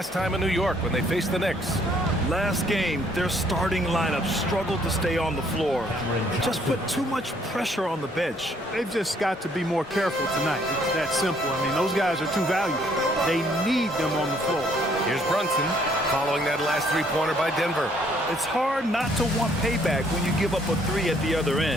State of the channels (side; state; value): both; normal; correlation 0.65